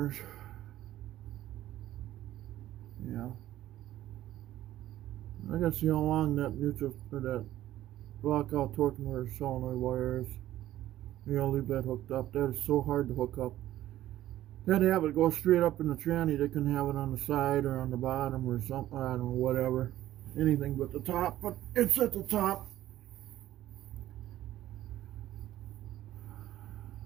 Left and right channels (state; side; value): quieter; left; 13.8 dB